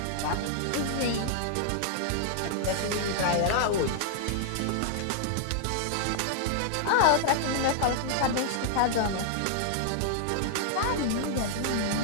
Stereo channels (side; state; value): both; different; correlation -0.01